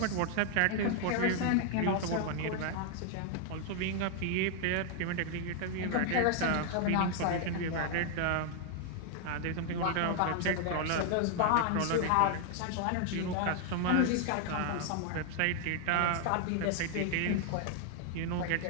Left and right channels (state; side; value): different; both; correlation 0.00